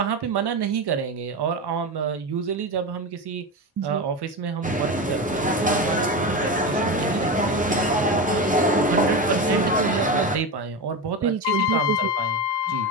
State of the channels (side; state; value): both; normal; correlation 0.20